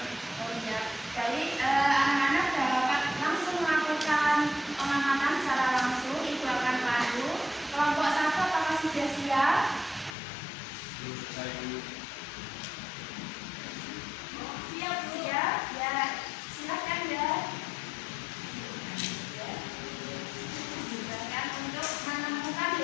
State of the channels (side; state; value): right; drops out; at 10.2 s